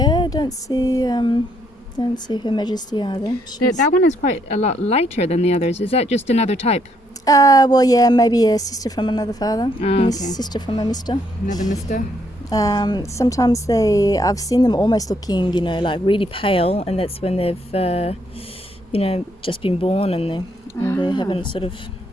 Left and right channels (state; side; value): normal; both; correlation 0.72